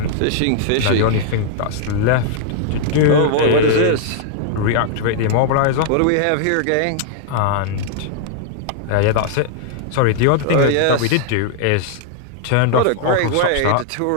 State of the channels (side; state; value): both; different; correlation -0.01